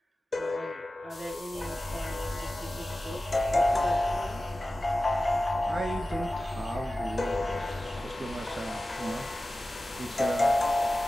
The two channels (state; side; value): normal; both; correlation 0.95